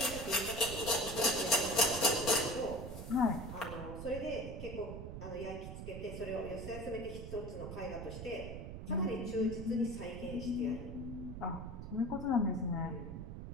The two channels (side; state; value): right; noise; rumble, 8 dB below the sound